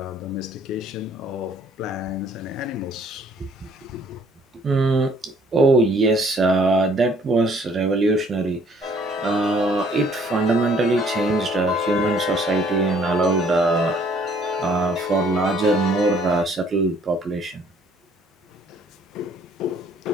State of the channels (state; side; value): normal; both; correlation 0.61